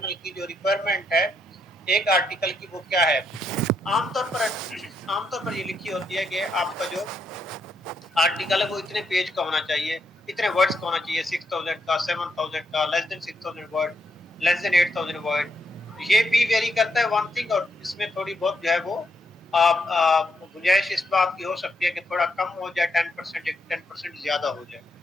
की जो रिक्वायरमेंट है एक आर्टिकल की वो क्या है। आमतौर पर ये लिखी होती है कि आपका जो आर्टिकल है वो इतने पेज का होना चाहिए, इतने वर्ड्स का होना चाहिए, 6,000 का, 7,000 का, less than 6,000 word, less than 8,000 word. ये भी वेरी करता है वन थिंग, और इसमें थोड़ी बहुत जो है वो गुंजाइश इस बात की हो सकती है कि थोड़ा कम हो जाए, 10% या 10% ज्यादा हो जाए,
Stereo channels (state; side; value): normal; both; correlation 0.78